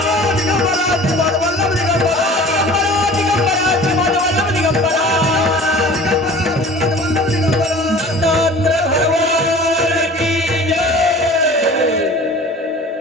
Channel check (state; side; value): normal; both; correlation 0.43